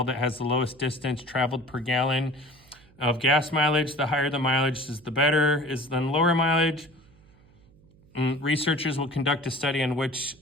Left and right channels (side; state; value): right; noise; hum, 28 dB below the sound